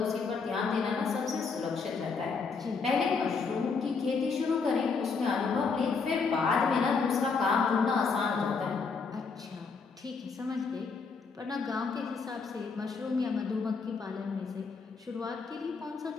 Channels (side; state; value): right; quieter; 5.0 dB